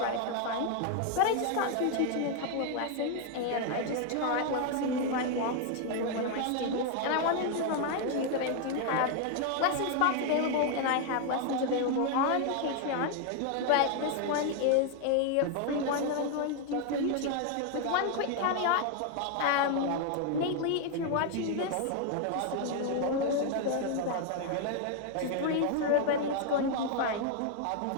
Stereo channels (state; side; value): different; both; correlation 0.00